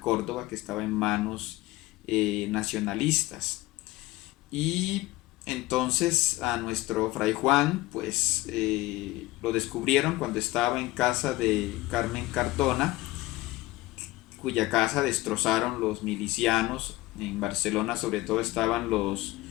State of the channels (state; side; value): quieter; right; 18.6 dB